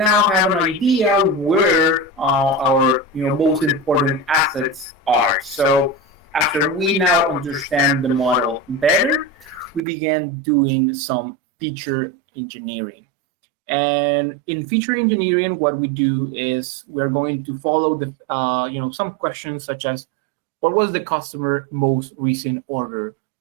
have an idea where our most important assets are. So after we now understand the model better, we began doing some feature engineering. And in feature engineering, what we do is we're going to follow some questions such as, what was the customer most recent order?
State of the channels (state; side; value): drops out; left; at 9.8 s